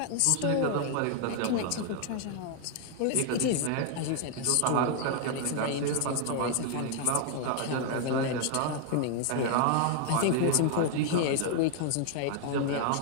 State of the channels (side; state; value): both; different; correlation 0.00